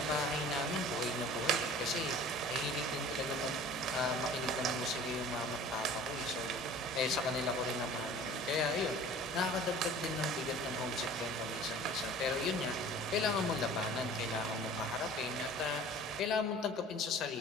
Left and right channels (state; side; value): normal; both; correlation 0.45